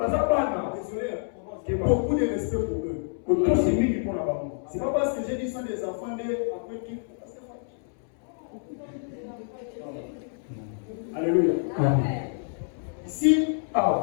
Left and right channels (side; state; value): right; silent; 60 dB below the other